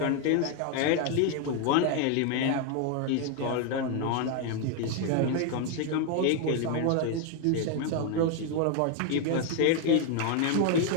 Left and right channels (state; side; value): different; both; correlation 0.01